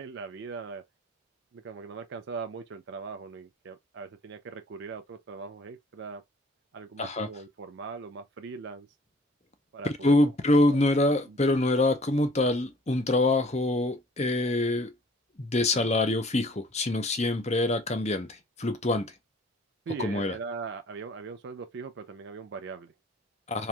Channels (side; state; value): both; normal; correlation 0.54